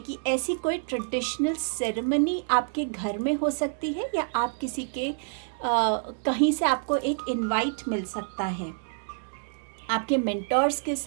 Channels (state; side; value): silent; left; digital silence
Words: ऐसी कोई ट्रेडिशनल सेरेमनी आपके घर में हो सकती है, या आप किसी के कहीं से आपको एक इनवाइट मिल सकता है। आपके मेंटर्स के